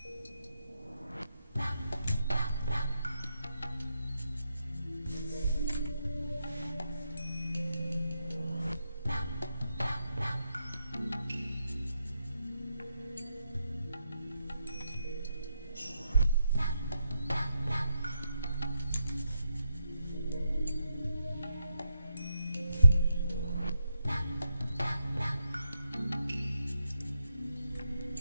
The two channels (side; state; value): both; inverted; correlation -0.82